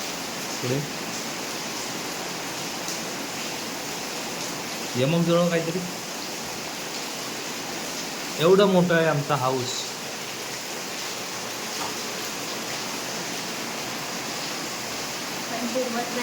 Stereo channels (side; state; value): both; identical; correlation 1.00